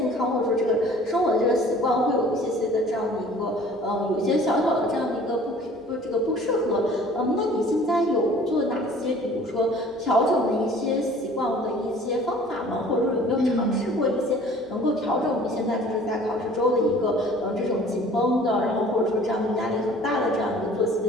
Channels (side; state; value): both; normal; correlation 0.50